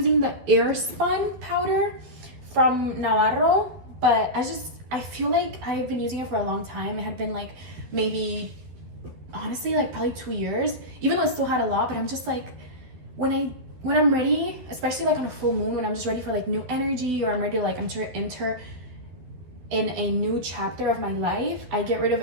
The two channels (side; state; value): left; late; 12 ms